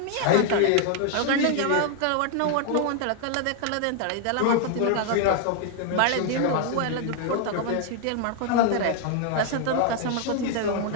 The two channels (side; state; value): both; different; correlation 0.00